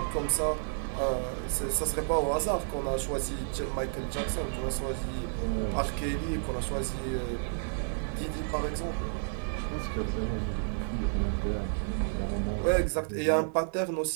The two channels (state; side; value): silent; left; 57 dB below the other